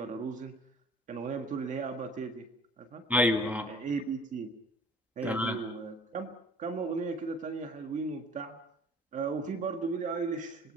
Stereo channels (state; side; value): normal; both; correlation 0.51